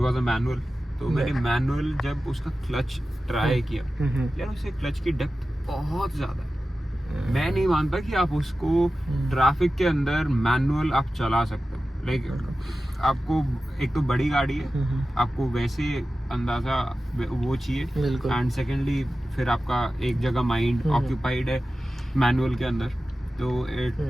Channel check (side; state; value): both; normal; correlation 0.94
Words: अ मैनुअल। तो मैंने मैनुअल जब उसका क्लच ट्राई किया, यार उससे क्लच की डेप्थ बहुत ज्यादा है। मैं नहीं मानता कि आप उसको ट्रैफिक के अंदर मैनुअल आप चला सकते हो। लाइक आपको एक तो बड़ी गाड़ी है, आपको वैसे अंदाजा वो चाहिए, एंड सेकेंडली फिर आपका एक जगह माइंड ऑक्यूपाइड है मैनुअल के अंदर, तो